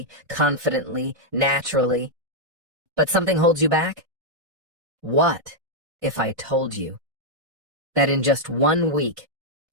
confidently, naturally, but something holds you back? What if I told you that in just 1 week,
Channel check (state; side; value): late; left; 1.5 ms